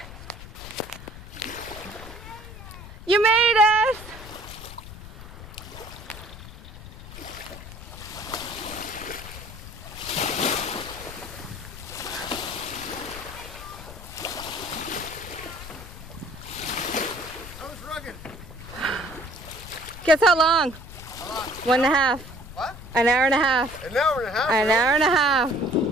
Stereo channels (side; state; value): left; noise; rumble, 14 dB below the sound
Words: You made it! That was rugged. Guess how long? How long? 1.5. What? An hour and a half. An hour and a half? An hour and a half.